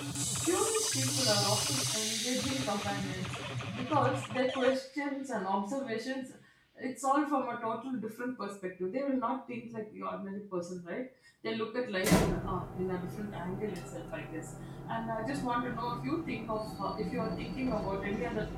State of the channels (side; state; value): both; identical; correlation 1.00